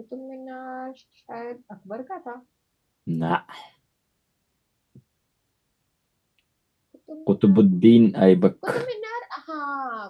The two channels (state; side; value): identical; both; correlation 1.00